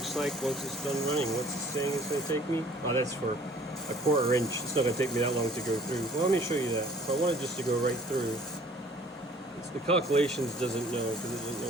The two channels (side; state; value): both; normal; correlation 0.54